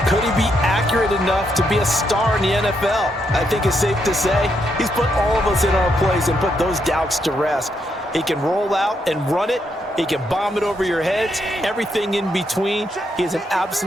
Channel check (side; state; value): both; normal; correlation 0.78